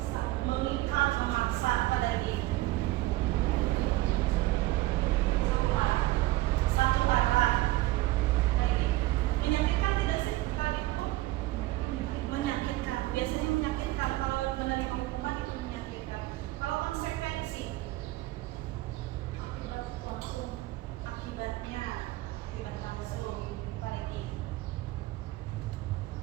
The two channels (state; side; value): quieter; left; 18.1 dB